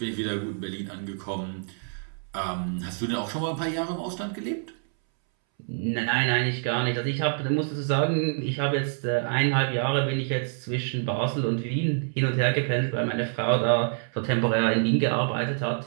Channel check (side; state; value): left; silent; 60 dB below the other